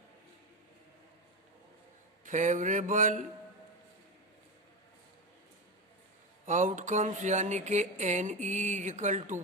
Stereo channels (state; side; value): normal; both; correlation 0.16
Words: फेवरेबल आउटकम्स यानी कि N E is equal to